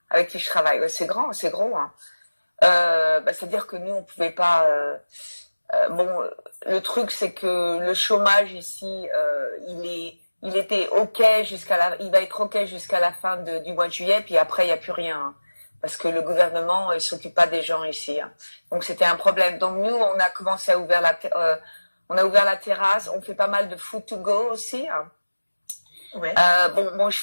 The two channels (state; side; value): inverted; both; correlation -1.00